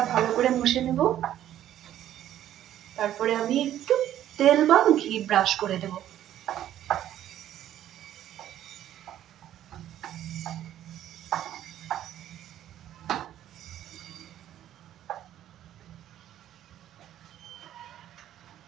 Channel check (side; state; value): left; quieter; 11.9 dB